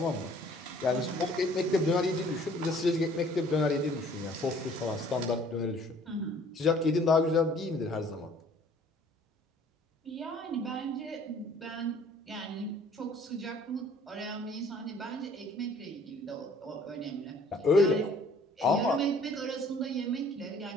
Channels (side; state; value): both; normal; correlation 0.55